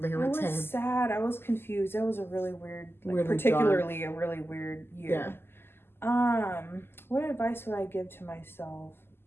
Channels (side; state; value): right; late; 0.11 ms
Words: were 10. I was sad. I was confused. That was a really weird, really particularly dark. a really weird year. Yeah. What advice would I give to myself?